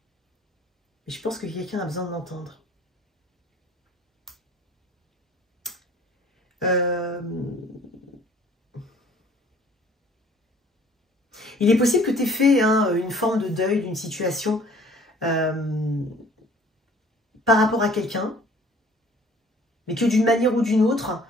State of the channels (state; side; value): normal; both; correlation 0.54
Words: Et je pense que quelqu'un a besoin de l'entendre. Il est possible que tu aies fait une forme de deuil d'une situation par rapport à quelqu'un, mais que d'une manière ou d'une autre,